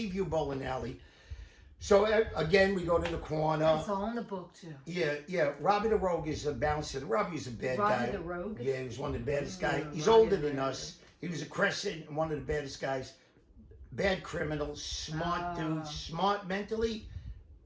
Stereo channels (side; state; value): both; identical; correlation 1.00